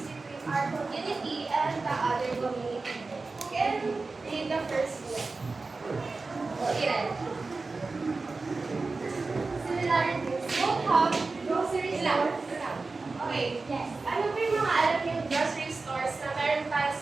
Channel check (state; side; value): quieter; left; 3.8 dB